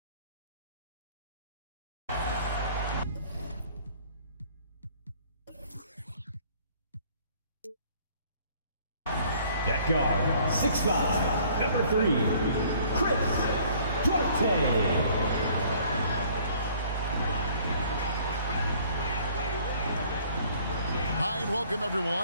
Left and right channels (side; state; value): both; inverted; correlation -0.56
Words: At guard, 6'5", number 3, Chris Duarte. Hi and welcome